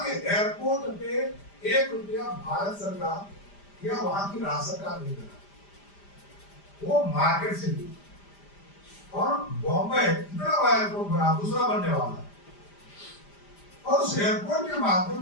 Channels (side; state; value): right; late; 5.0 ms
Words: के एयरपोर्ट पे 1 रुपया भारत सरकार या वहां की राज्य सरकार नहीं देगा, वो मार्केट से ली। और बॉम्बे इतना बड़ा एयरपोर्ट बना, दूसरा बनने वाला है, और उस एयरपोर्ट के